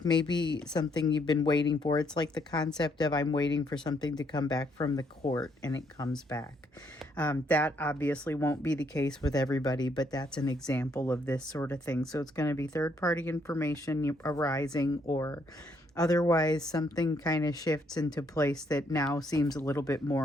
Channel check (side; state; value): both; normal; correlation 0.71